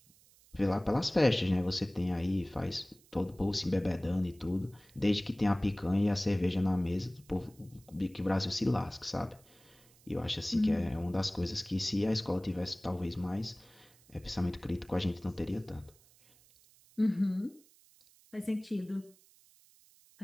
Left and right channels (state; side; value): noise; right; hiss, 28 dB below the sound